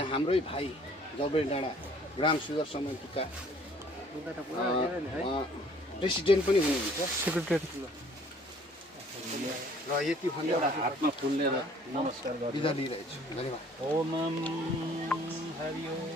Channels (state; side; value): normal; both; correlation 0.56